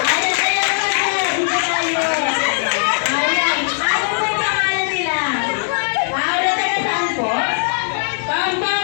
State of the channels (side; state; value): right; silent; digital silence